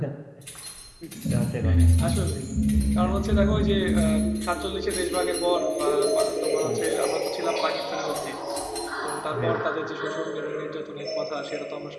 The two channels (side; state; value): both; identical; correlation 1.00